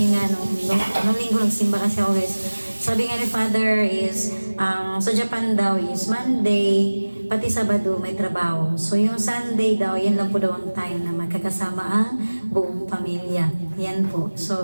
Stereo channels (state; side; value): inverted; both; correlation -1.00